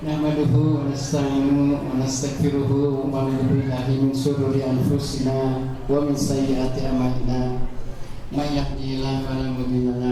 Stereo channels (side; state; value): both; identical; correlation 1.00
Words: nahmaduhu wa nasta'inuhu wa nastaghfiruhu wa na'udzu billahi min shururi anfusina wa min sayyiati a'malina may yahdihillahu fala mudilla